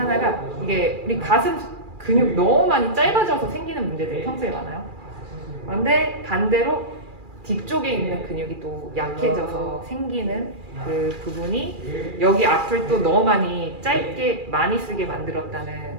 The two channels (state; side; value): late; left; 2.4 ms